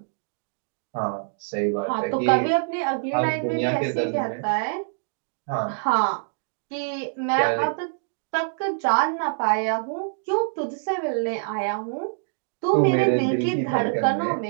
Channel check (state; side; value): silent; left; digital silence